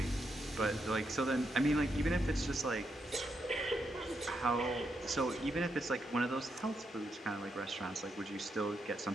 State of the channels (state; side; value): normal; both; correlation 0.81